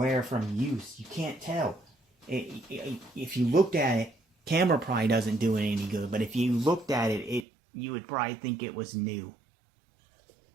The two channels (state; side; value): drops out; left; at 7.5 s